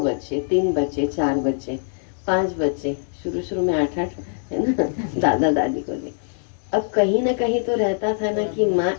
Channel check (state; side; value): silent; right; digital silence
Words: 3 बच्चे, 4 बच्चे, 5 बच्चे, शुरू में 8 है ना, दादा दादी को ले। अब कहीं ना कहीं तो रहता था ना कि माँ